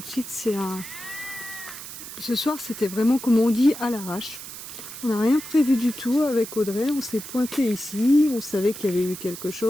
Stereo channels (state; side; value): noise; right; hiss, 11 dB below the sound